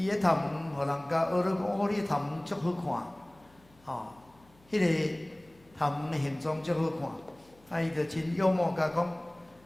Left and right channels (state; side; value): noise; left; hum, 29 dB below the sound